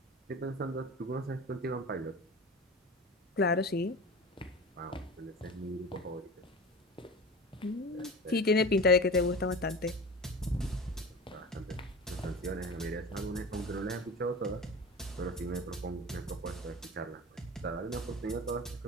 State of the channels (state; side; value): normal; both; correlation 0.33